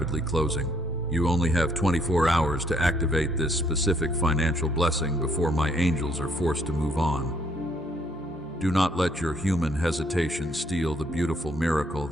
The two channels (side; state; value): both; normal; correlation 0.68